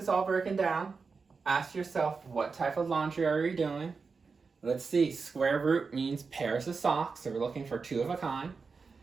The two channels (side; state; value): left; quieter; 4.8 dB